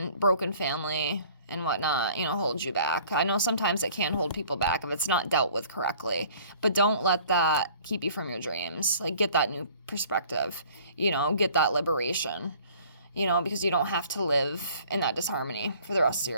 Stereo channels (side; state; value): both; inverted; correlation -0.52